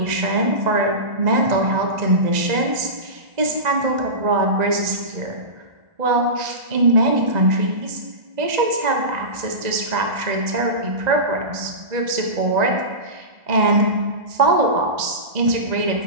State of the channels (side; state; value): left; late; 1.9 ms